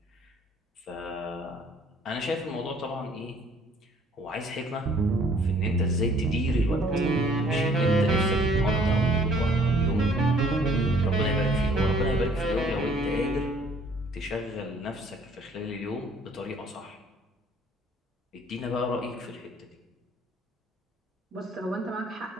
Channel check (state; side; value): normal; both; correlation 0.58